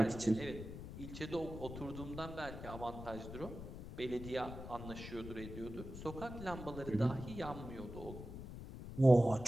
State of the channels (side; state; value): left; noise; rumble, 10 dB below the sound